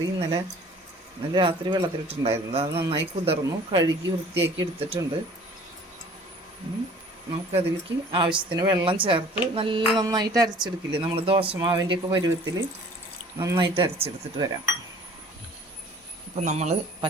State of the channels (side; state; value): both; normal; correlation 0.50